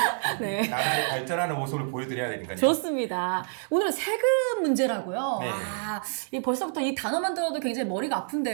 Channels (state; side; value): silent; left; 60 dB below the other